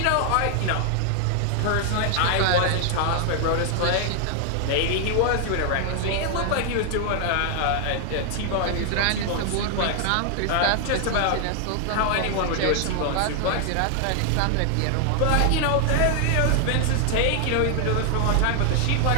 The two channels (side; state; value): both; different; correlation 0.00